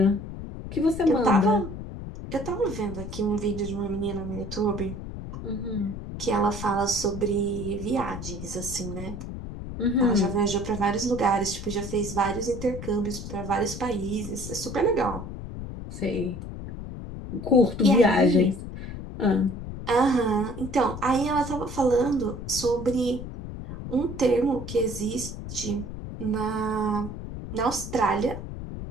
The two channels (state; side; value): noise; left; rumble, 9 dB below the sound